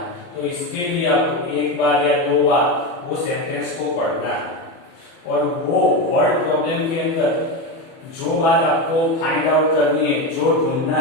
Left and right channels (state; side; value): late; right; 30 ms